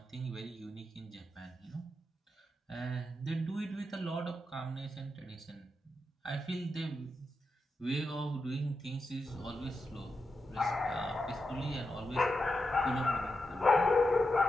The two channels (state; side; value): normal; both; correlation 0.88